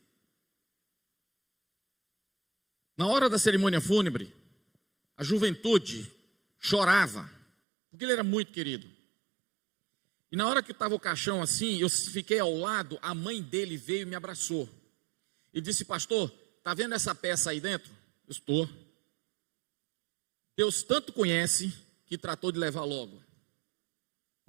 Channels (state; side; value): drops out; left; at 7.5 s